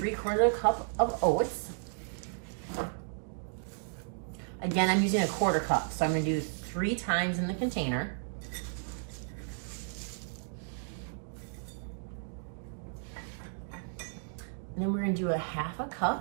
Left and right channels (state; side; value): silent; left; digital silence